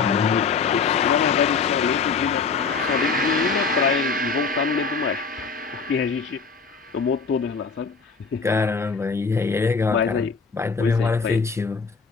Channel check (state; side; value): quieter; right; 5.0 dB